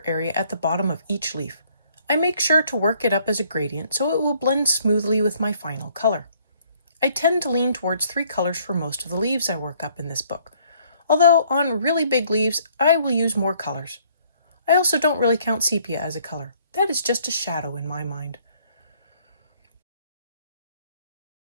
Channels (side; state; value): both; inverted; correlation -0.63